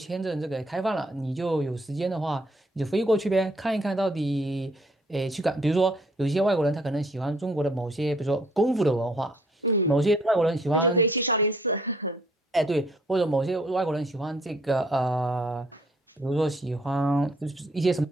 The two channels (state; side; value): normal; both; correlation 0.64